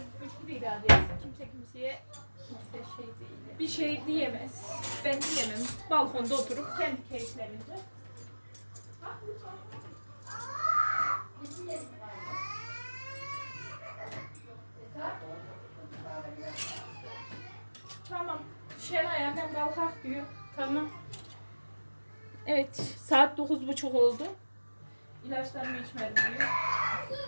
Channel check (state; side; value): inverted; both; correlation -1.00